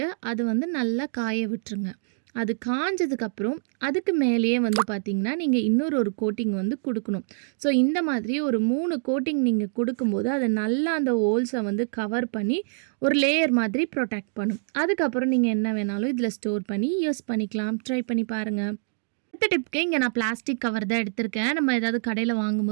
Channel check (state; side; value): silent; left; digital silence